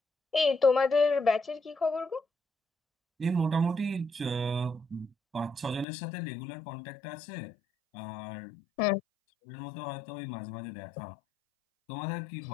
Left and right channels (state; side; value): drops out; right; at 5.9 s